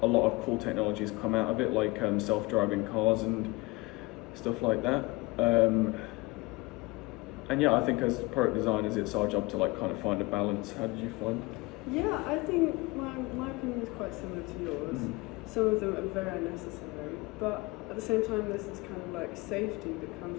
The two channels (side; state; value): right; quieter; 23.9 dB